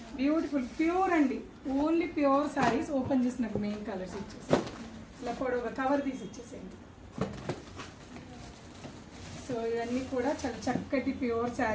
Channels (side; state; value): both; identical; correlation 1.00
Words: బ్యూటిఫుల్ ప్యూర్ అండి, ఓన్లీ ప్యూర్ శారీస్. ఓపెన్ చేసిన మెయిన్ కలర్స్ ఇచ్చేసి ఇలా పొడవుగా కవర్ తీసి ఇచ్చేసేయండి. సో ఇవన్నీ కూడా చాలా చక్కటి ప్యూర్